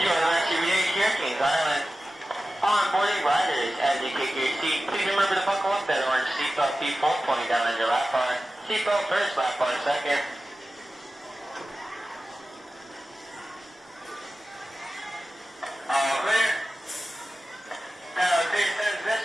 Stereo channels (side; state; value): both; normal; correlation 0.95